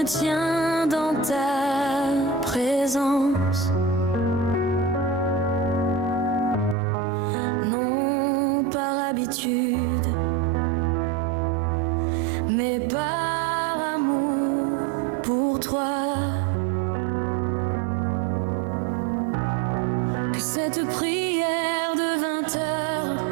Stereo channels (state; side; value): drops out; left; at 6.8 s